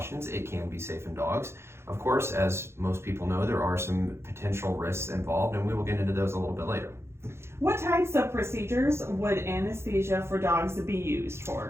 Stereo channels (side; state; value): left; late; 0.12 ms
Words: it can be safe in dogs. Of course, as most people know, there are some potential risks involved, and we will get into those a little bit later. What types of procedures would anesthesia for dogs be used